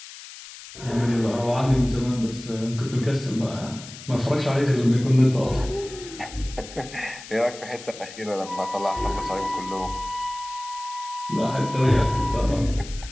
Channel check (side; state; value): left; noise; hiss, 15 dB below the sound